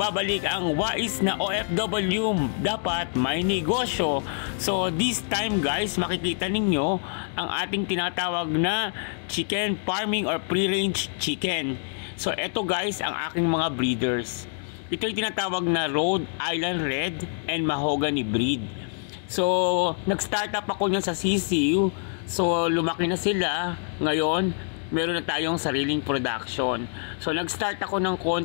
ang wais na OFW dapat may negosyo. So this time guys, makikita ninyo ang ating tinatawag na chicken farming or free-range chicken. So eto guys ang aking mga breeders. Ito yung tinatawag na Rhode Island Red and Mahogany breed. So nag-start up ako niyan sa CCU. So lumaki na sila. Ngayon meron na tayong sariling production. So nag-start ako ng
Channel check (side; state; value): right; silent; 61 dB below the other